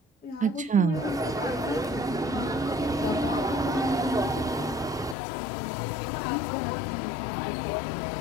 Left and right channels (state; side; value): drops out; right; at 5.2 s